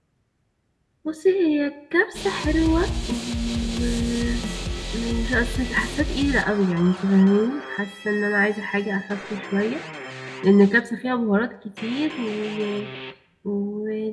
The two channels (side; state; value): both; identical; correlation 1.00